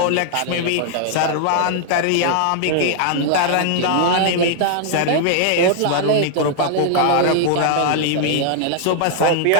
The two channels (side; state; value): both; different; correlation -0.01